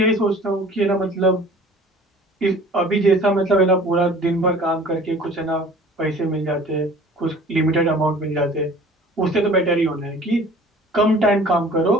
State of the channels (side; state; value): both; normal; correlation 0.47